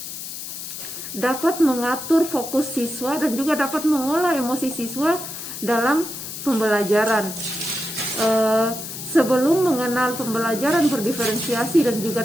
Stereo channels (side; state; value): left; noise; hiss, 9 dB below the sound